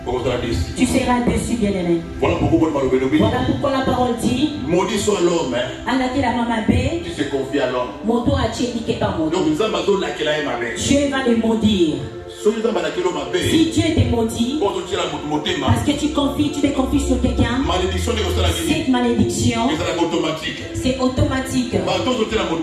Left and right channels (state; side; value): identical; both; correlation 1.00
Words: Tu seras déçu, bien-aimé. Voilà pourquoi la parole dit maudit soit l'homme qui se confie à l'homme. Donc Dieu va les maudire. Si Dieu te maudit, parce que tu te confies sur quelqu'un, cette malédiction, c'est automatique.